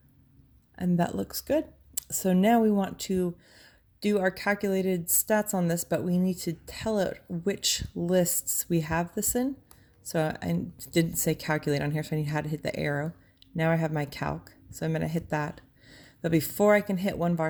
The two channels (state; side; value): identical; both; correlation 1.00